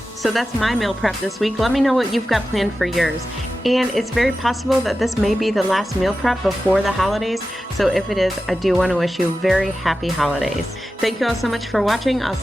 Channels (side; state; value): both; normal; correlation 0.93